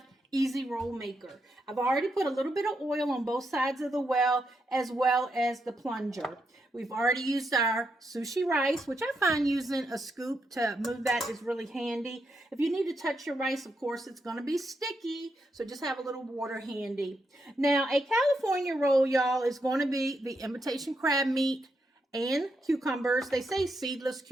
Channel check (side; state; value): both; normal; correlation 0.82